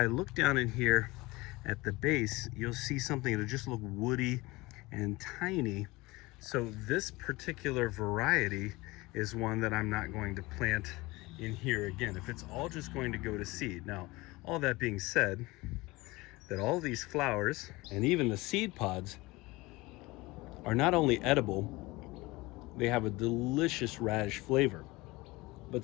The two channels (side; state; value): right; quieter; 21.8 dB